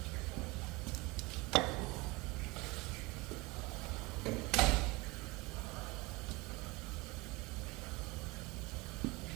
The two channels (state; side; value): quieter; left; 24.0 dB